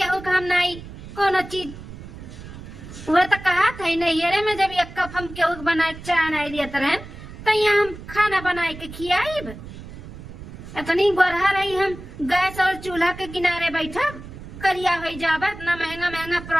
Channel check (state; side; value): noise; right; rumble, 14 dB below the sound